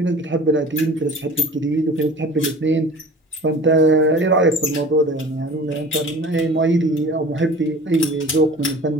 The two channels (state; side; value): normal; both; correlation 0.42